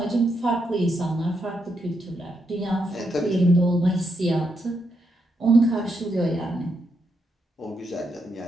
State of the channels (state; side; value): normal; both; correlation 0.81